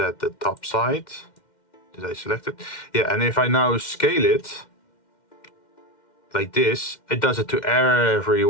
the top side, did I select it? Yeah, and if I now scale it like this, it does it to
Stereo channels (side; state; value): right; late; 2.1 ms